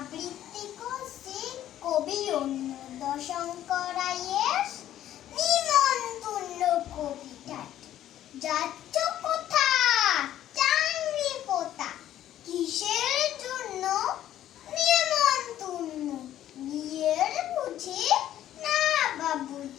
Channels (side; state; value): right; quieter; 12.2 dB